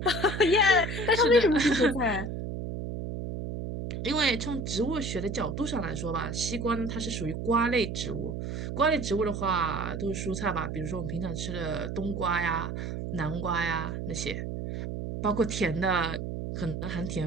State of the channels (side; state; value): right; noise; hum, 5 dB below the sound